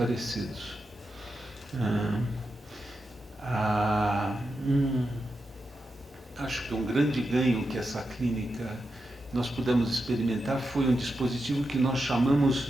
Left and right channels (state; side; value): normal; both; correlation 0.88